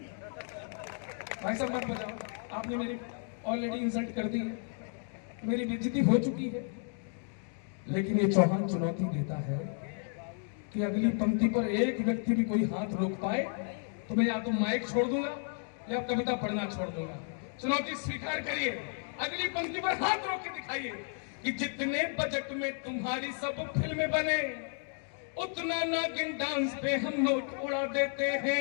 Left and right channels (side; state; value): right; silent; 56 dB below the other